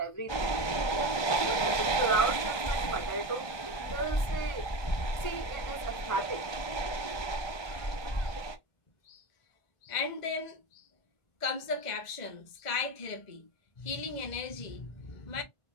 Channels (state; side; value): late; right; 1.3 ms